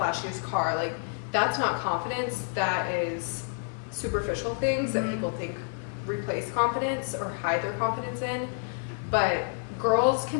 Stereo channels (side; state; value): right; silent; 59 dB below the other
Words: car. Like that's not confidence. That is superficial things that people think replace confidence or hide their confidence in. But girls